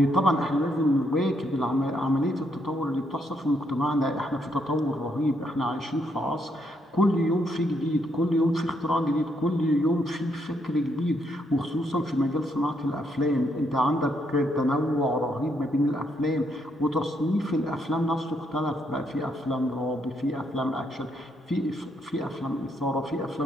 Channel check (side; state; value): both; normal; correlation 0.75